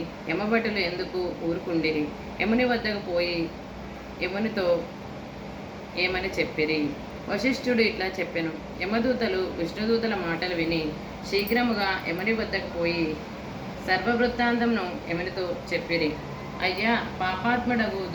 యమభటులు ఎందుకు ఊరుకుండిరి? యముని వద్దకు పోయి యమునితో ఏమని చెప్పిరి? వశిష్ఠుడు ఇట్లా చెప్పెను. యమదూతలు విష్ణుదూతల మాటలు విని శీఘ్రముగా యముని వద్దకు పోయి సర్వవృత్తాంతంను యమునితో చెప్పిరి. అయ్యా, పాపాత్ముడగు,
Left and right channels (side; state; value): both; identical; correlation 1.00